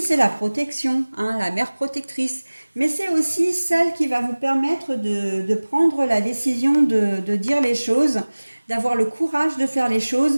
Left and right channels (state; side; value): inverted; both; correlation -1.00